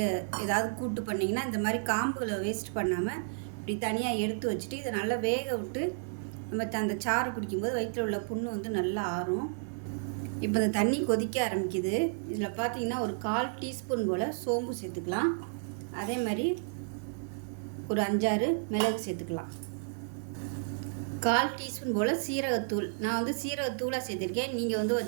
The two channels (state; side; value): silent; left; digital silence